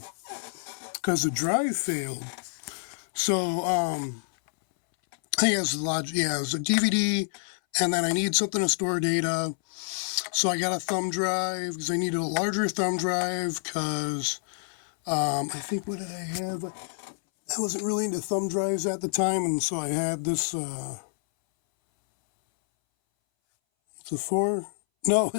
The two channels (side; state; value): right; silent; 60 dB below the other